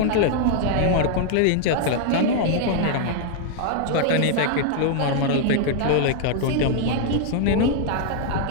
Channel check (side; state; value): both; different; correlation 0.00